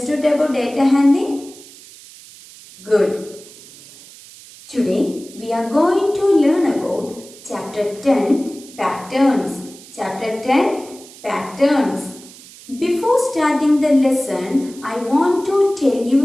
about data handling? Good. Today we are going to learn about chapter 10 patterns. Chapter 10 patterns. Before starting the lesson, I want to tell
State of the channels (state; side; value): noise; right; hiss, 20 dB below the sound